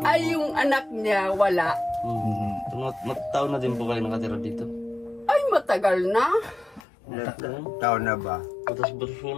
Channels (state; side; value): drops out; right; at 6.8 s